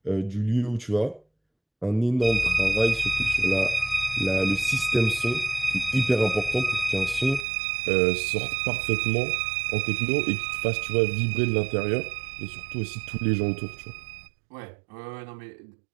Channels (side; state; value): left; drops out; at 7.5 s